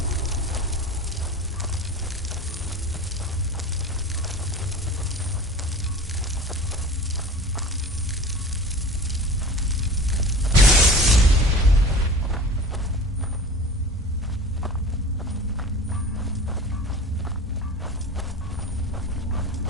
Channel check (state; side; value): normal; both; correlation 0.36